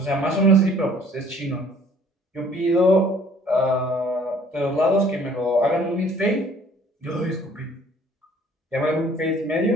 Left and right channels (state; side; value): normal; both; correlation 0.56